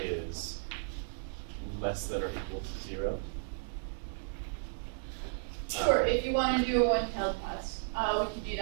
less than or equal to 0? Sure, if you want to do a one-tailed test, we can do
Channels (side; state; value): left; silent; digital silence